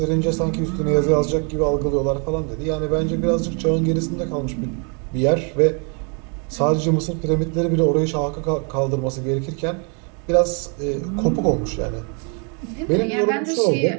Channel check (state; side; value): quieter; left; 36.7 dB